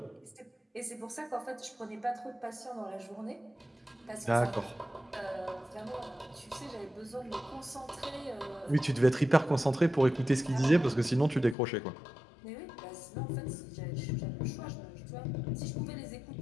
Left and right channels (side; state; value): right; drops out; at 11.6 s